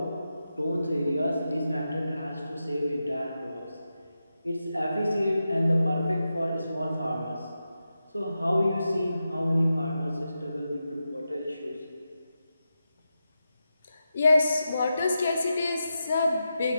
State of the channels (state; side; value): inverted; both; correlation -0.89